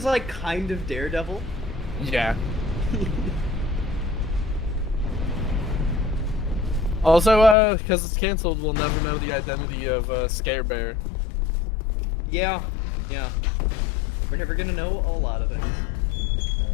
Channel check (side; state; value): right; drops out; at 7.6 s